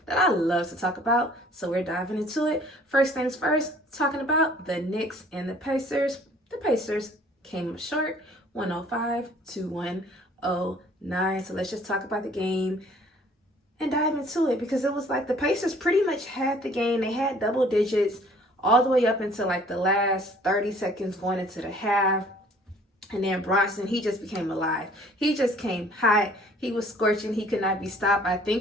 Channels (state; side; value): normal; both; correlation 0.55